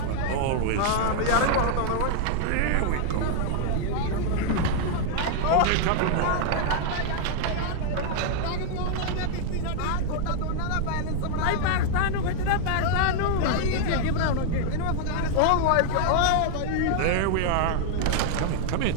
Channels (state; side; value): different; both; correlation -0.01